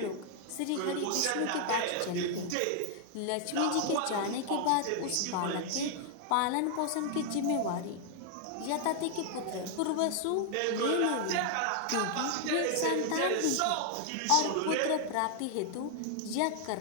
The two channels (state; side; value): different; both; correlation 0.00